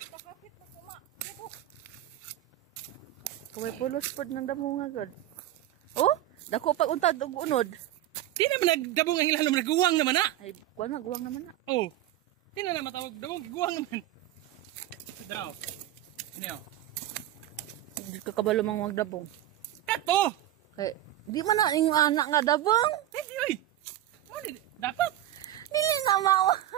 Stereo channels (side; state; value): left; quieter; 13.3 dB